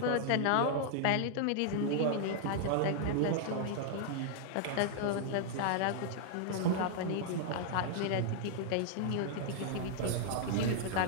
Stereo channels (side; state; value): both; different; correlation -0.01